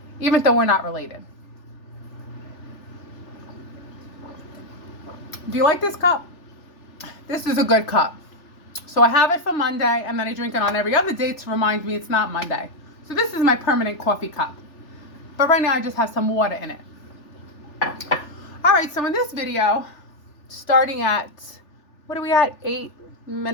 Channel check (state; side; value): late; right; 3.4 ms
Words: even though we're not related. Do you like this cup? This is a good cup. So I have it for Monday, and then I drink it on every other day to remind me it's not Monday. So this is my permanent coffee cup. But right now I just have some water in it. All right, so in this video, starting at, what are we at? 8